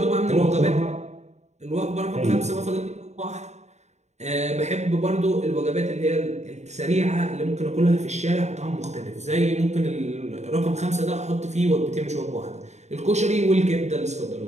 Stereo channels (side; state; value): left; late; 0.33 ms